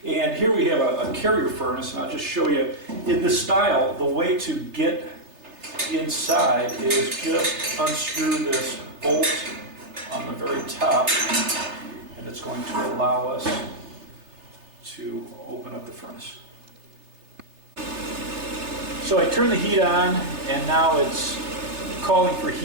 And here we have a carrier furnace, and I'll just show you in this style. The way to get inside is just unscrew this bolt on the very top, and it's going to allow us to open up the furnace. So I turn the heat on, and now it's calling for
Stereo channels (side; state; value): left; late; 3.3 ms